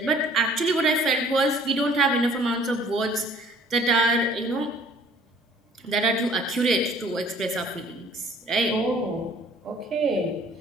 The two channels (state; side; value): normal; both; correlation 0.55